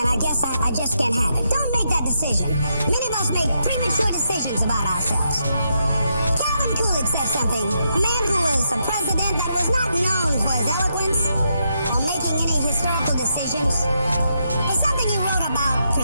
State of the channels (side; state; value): both; inverted; correlation -0.80